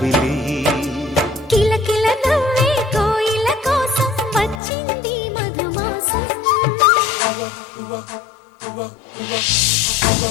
కిలకిల నవ్వే కోయిల కోసం వచ్చింది మధుమాసం.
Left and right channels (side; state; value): right; drops out; at 4.6 s